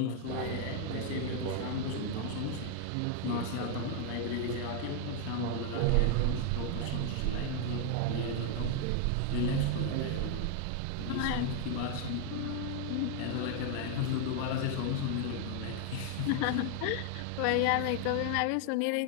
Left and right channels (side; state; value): both; different; correlation 0.00